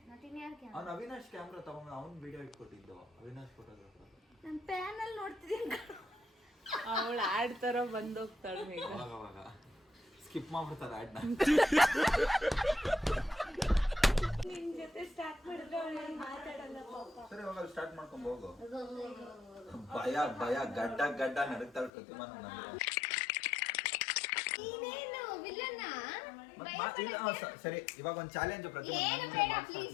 ಕ್ಯಾಮ್ರಾ. ಅವ್ನು ಅವಿನಾಶ್ ಕ್ಯಾಮ್ರಾ ತಗೊಂಡು ಅವ್ನು ವಿಡಿಯೋ ಇಟ್ಕೊಟ್ಟಿದ್ದು. ಅವಿನಾಶ್ ಫೋಟೋಗ್ರಾಫರ್. ನಾನು ಪ್ಯಾನಲ್ ನೋಡ್ತಿದ್ದೀನಿ. ಅವಳು ಆಡ್ ತರ ಬಂದೋಗ್ತಾಳೆ. ಅವಾಗ ಸ್ಕಿಪ್ ಮಾಡ್ಬಿಡ್ತಾರೆ ಆಡ್ನ. ನಿನ್ ಜೊತೆ ಸ್ಟಾರ್ಟ್ ಮಾಡಿದ್ರೆ ಮಾತಾಡಲ್ಲ ಪಾಪ. ಸರಿ, ಹೋಗಲ್ಲ, ಸ್ಟಾರ್ಟ್ ಮಾಡ್ಕೊಂಡು ಹೋಗು. ಭಯ ಗಡ್ಡ ನಡುಕ್ತಾಳೆ ಪ್ರತಿಮಾ. ಸರಿ ಇವಾಗ ಒಂದು ಚಾಲೆಂಜ್ ಏನು ಬೇಡ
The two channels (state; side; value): drops out; right; at 21.9 s